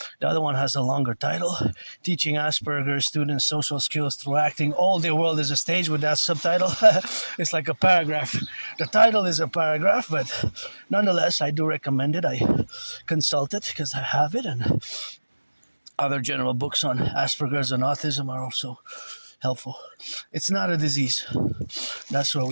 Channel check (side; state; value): both; inverted; correlation -1.00